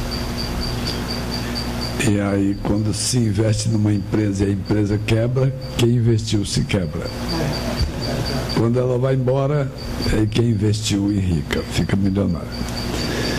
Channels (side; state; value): both; identical; correlation 1.00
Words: E aí, quando se investe numa empresa e a empresa quebra, quem investiu se quebra. Quando ela vai embora, aí quem investiu enrica, fica milionário.